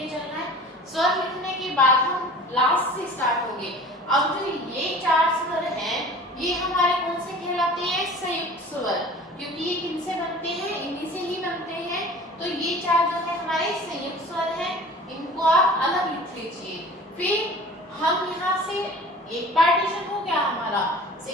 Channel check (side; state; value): both; normal; correlation 0.42